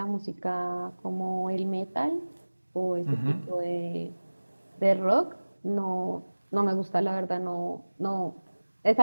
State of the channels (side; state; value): both; inverted; correlation -1.00